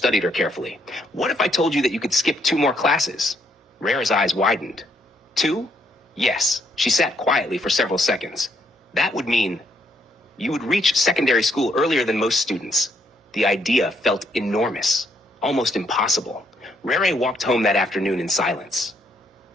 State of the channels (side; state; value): both; normal; correlation 0.72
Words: her carefully. What if I told you that you could skip 2 more classes? Rare's eyes widened. 2? Yes. She sat quietly for several seconds. That would mean you would reach secondary school earlier than most students. The idea felt enormous, almost impossible. Rere walked home that afternoon in silence.